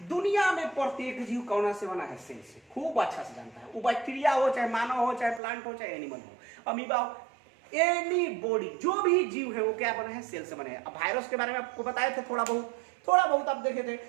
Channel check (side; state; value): left; drops out; at 5.4 s